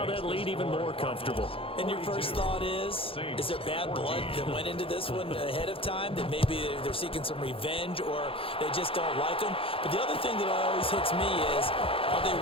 that lead even more comfortable. And your first thought is there bad blood that went into this one ahead of time, that maybe they're seeking some revenge or they just don't like them? But the other thing that always hits me is, are they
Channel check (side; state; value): right; late; 0.27 ms